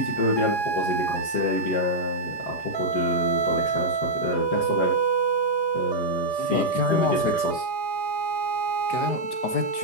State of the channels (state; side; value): late; right; 4.9 ms